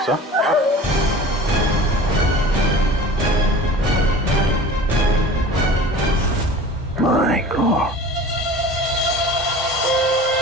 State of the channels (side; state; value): both; normal; correlation 0.40